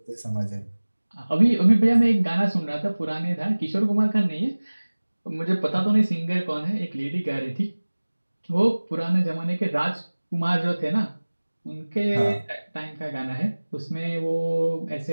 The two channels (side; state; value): both; inverted; correlation -1.00